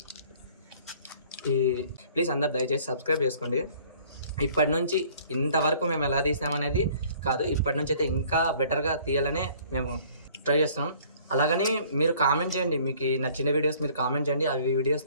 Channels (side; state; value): both; inverted; correlation -0.55